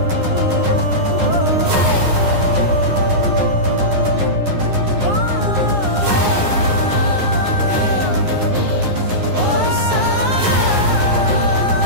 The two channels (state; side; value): late; left; 9.8 ms